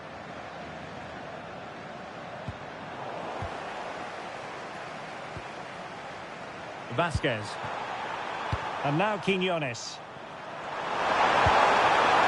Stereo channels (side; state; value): both; identical; correlation 1.00